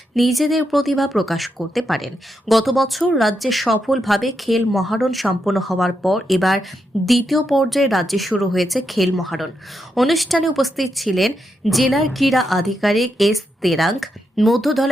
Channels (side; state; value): both; normal; correlation 0.83